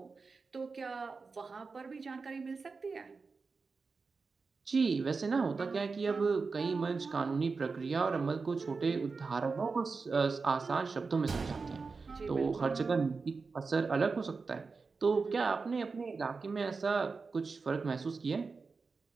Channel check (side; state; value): left; quieter; 4.5 dB